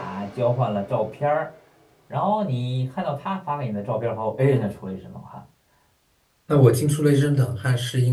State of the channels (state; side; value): identical; both; correlation 1.00